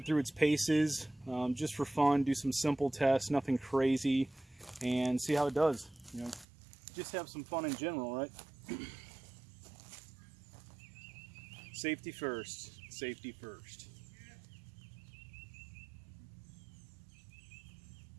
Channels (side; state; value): left; drops out; at 6.5 s